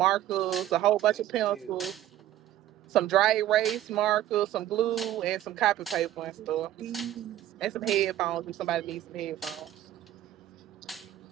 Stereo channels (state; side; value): quieter; left; 12.8 dB